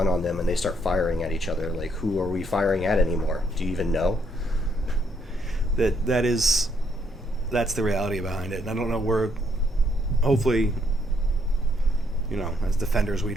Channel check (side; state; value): both; normal; correlation 0.72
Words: on them and they start firing at each other. Like, who are we firing at anymore? Do you even know? That's the reality behind it. And I don't know, hopefully, you know, as defenders, we